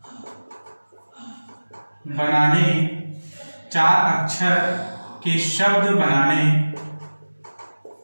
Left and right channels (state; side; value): inverted; both; correlation -1.00